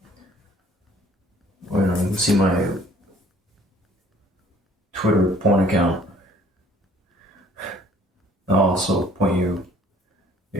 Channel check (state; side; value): normal; both; correlation 0.57